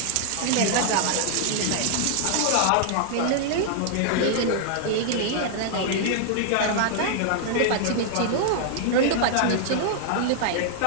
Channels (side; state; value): both; different; correlation -0.01